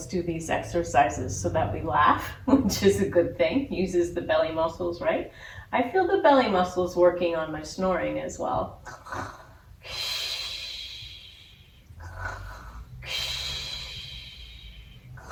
do these exercises so that we laugh, which is a good thing. Uses the belly muscles, right? I feel the belly muscles working on my snoring as well.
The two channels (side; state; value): both; identical; correlation 1.00